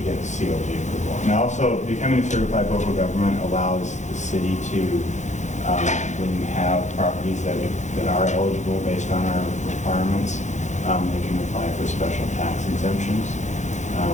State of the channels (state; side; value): late; right; 0.34 ms